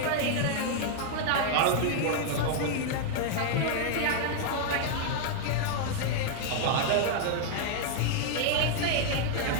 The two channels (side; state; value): both; different; correlation 0.00